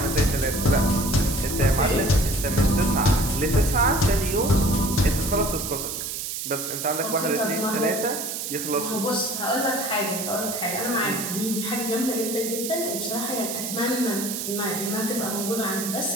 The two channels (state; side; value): noise; right; hiss, 5 dB below the sound